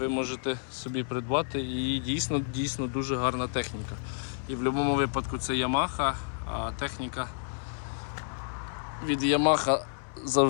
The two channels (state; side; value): silent; right; 58 dB below the other